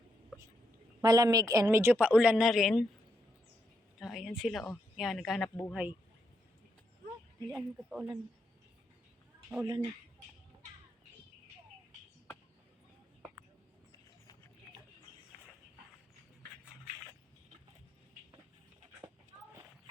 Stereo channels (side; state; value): both; normal; correlation 0.80